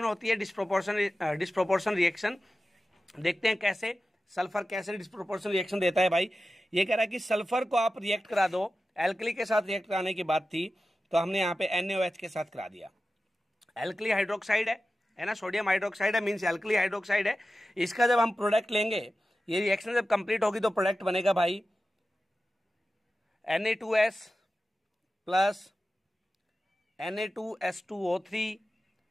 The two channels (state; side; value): normal; both; correlation 0.94